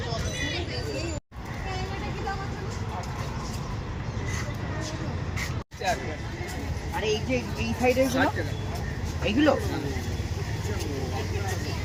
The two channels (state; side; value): identical; both; correlation 1.00